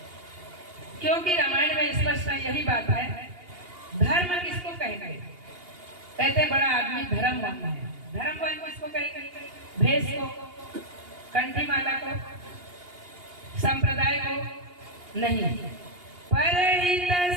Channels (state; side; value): late; left; 2.8 ms